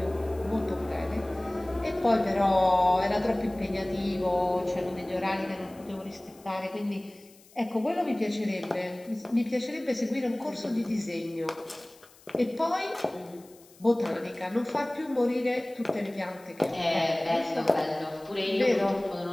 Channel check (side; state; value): left; noise; hiss, 26 dB below the sound